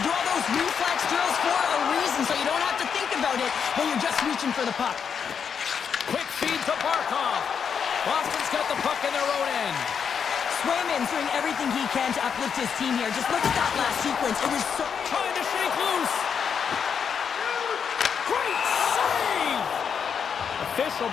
do all those reflex drills for a reason, so you don't have to think about it when you're just reaching for the puck. Quick feed to Barkov. Boston's got the puck in their own end. Swayman's doing everything he can to uplift his team here. Just look at that last sequence. It was so... Trying to shake loose. Great save! The official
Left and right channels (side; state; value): right; quieter; 7.0 dB